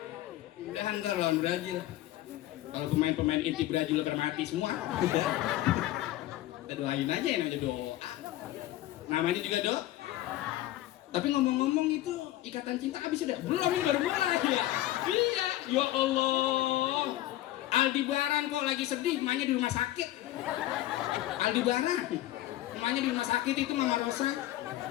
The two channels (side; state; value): right; quieter; 15.0 dB